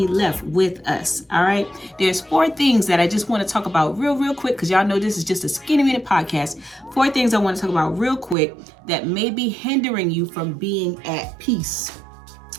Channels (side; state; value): left; drops out; at 8.3 s